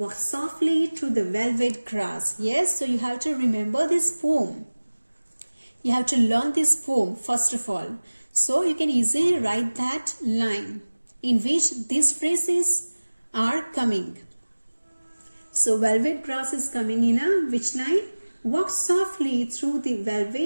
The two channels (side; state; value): both; inverted; correlation -1.00